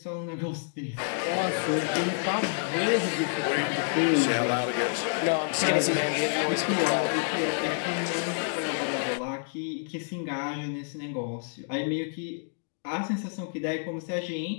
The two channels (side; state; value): right; silent; digital silence